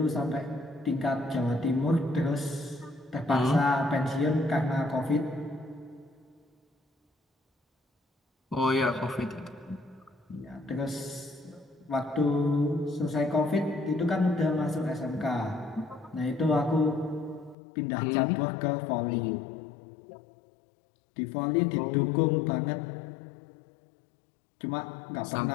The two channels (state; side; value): drops out; right; at 17.6 s